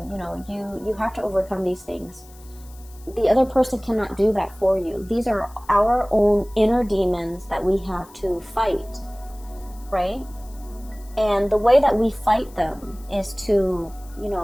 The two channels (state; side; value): noise; left; hiss, 25 dB below the sound